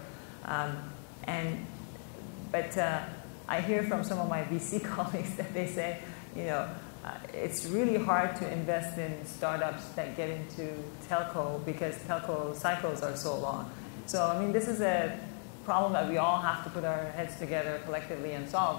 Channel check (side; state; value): right; silent; 54 dB below the other